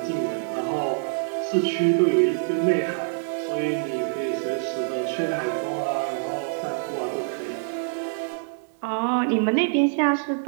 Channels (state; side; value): silent; left; digital silence